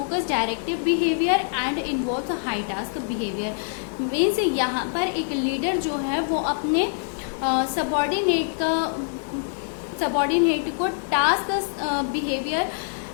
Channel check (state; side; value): silent; right; digital silence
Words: directive behaviour and involve high task behaviour. Means यहाँ पर एक लीडर जो है वो अपने सबऑर्डिनेट को टास्क बिहेवियर